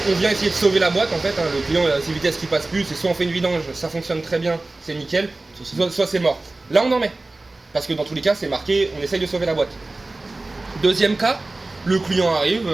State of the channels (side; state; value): left; quieter; 3.1 dB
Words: on vient essayer de sauver la boîte en fait, hein, le client a ses vitesses qui passent plus, c'est soit on fait une vidange, ça fonctionne très bien, c'est nickel, soit c'est mort. Là on en met, parce que dans tous les cas c'est marqué, on essaye de sauver la boîte. Deuxième cas, le client arrive,